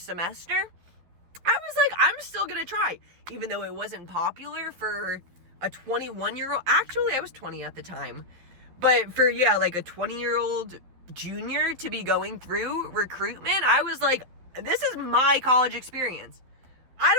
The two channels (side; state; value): left; late; 12 ms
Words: semester, I was like, I'm still going to try. Even though it wasn't popular for a 21-year-old. Actually, I was 20 at the time. But for, like a 20-year-old junior to be going through recruitment, I was like, this is my college experience. I